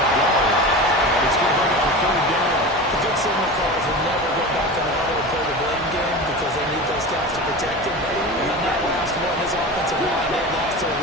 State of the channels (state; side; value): normal; both; correlation 0.30